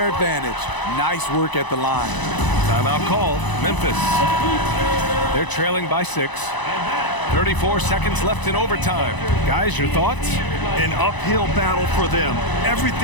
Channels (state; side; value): late; right; 1.0 ms